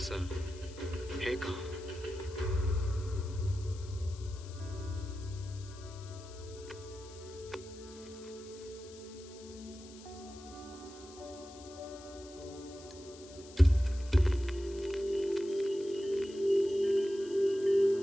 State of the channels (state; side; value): noise; left; hiss, 19 dB below the sound